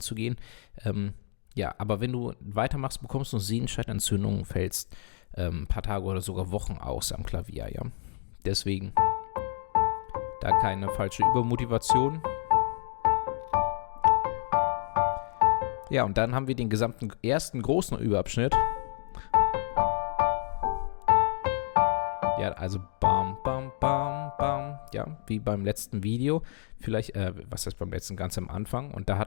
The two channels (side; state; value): right; silent; 58 dB below the other